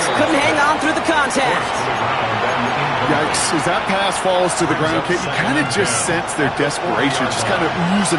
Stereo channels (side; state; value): both; identical; correlation 1.00